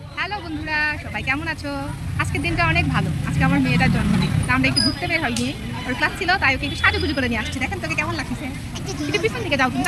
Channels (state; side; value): identical; both; correlation 1.00